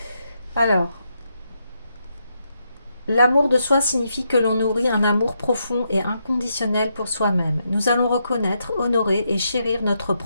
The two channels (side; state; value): both; inverted; correlation -0.81